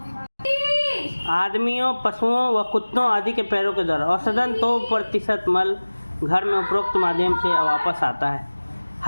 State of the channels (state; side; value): inverted; both; correlation -1.00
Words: आदमियों, पशुओं व कुत्तों आदि के पैरों के द्वारा औसतन 2% मल घर में उपरोक्त माध्यम से वापस आता है।